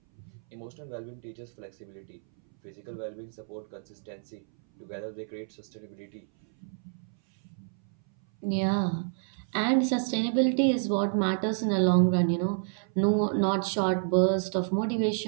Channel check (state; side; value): silent; left; 58 dB below the other